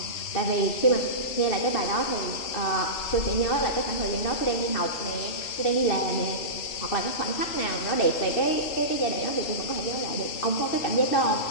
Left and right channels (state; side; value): late; right; 3.4 ms